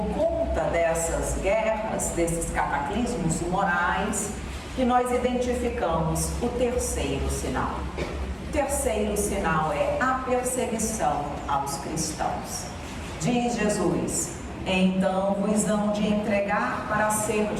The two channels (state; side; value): identical; both; correlation 1.00